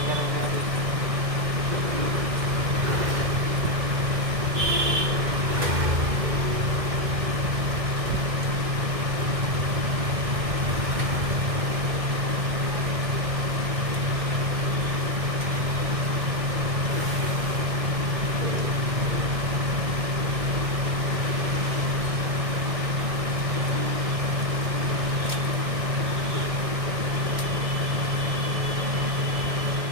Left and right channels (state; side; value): late; left; 1.7 ms